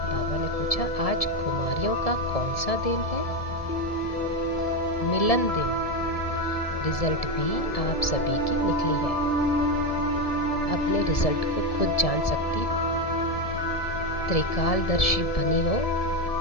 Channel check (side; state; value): right; late; 1.7 ms